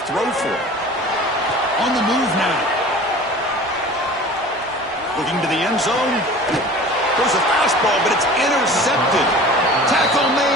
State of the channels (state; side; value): normal; both; correlation 0.41